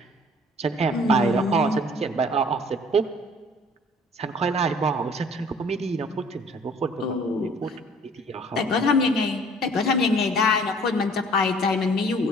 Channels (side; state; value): both; normal; correlation 0.54